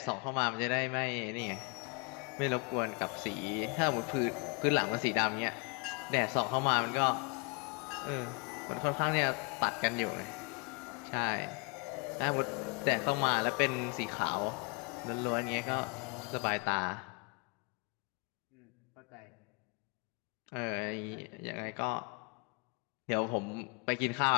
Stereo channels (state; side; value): quieter; right; 32.3 dB